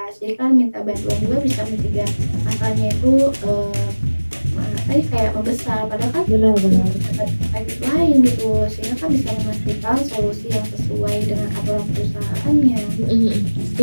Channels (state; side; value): inverted; both; correlation -1.00